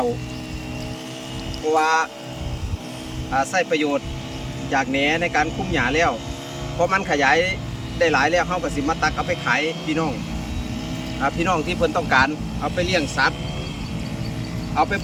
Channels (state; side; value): identical; both; correlation 1.00